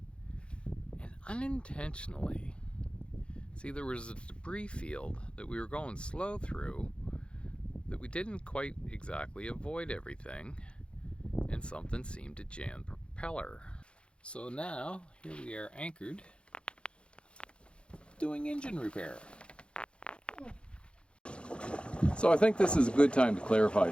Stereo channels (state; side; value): late; right; 0.057 ms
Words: and unintentionally, see, there was a debris field that we were going slow through that we didn't quite exactly avoid everything, and something seemed to jam the propeller. So now, here we are anchored, doing engine repair. So I think this is a good time to